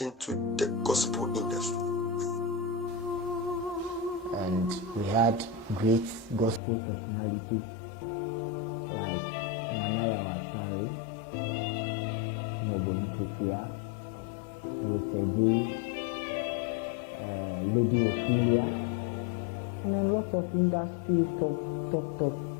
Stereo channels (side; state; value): right; drops out; at 6.6 s